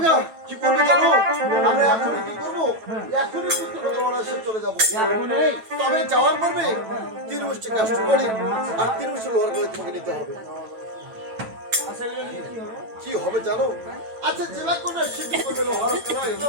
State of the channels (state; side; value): late; left; 9.1 ms